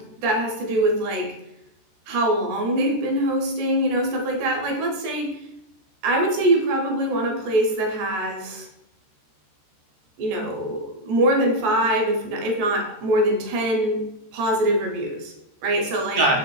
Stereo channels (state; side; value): late; left; 13 ms